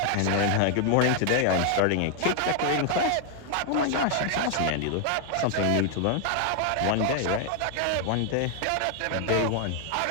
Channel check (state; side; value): different; both; correlation 0.00